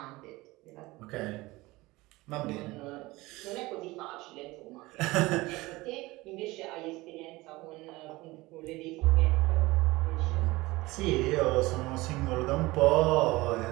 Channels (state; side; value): quieter; left; 20.6 dB